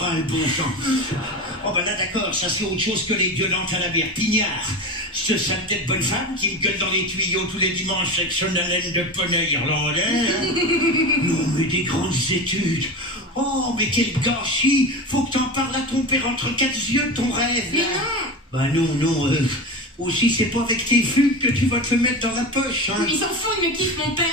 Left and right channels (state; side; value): normal; both; correlation 0.26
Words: bon sang. Oh, ben là, d'accord, ça c'est autre chose que les gueulantes à la bière pignard. Ce sale tête bonne femme qui me gueule dans les tuyaux tous les dimanches avec son haleine de poney irlandais. Hein. Non, mais des grandes études. Oh, mais quel gâchis. Faut que t'en parles à ton père entre quatre yeux, ton rêve, là. Bah non, aussi c'est pas avec tes fugues que tu vas te le mettre dans la poche, hein. Il s'en fout, il me kiffe mon père,